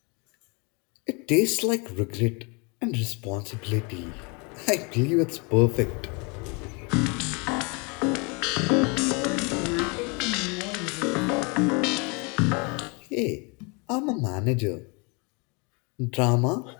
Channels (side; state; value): right; quieter; 31.4 dB